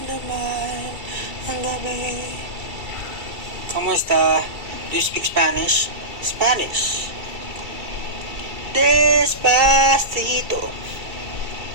naman ang gabi. Kamusta? Do you speak Spanish? Spanish. Despacito.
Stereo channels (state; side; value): late; left; 2.3 ms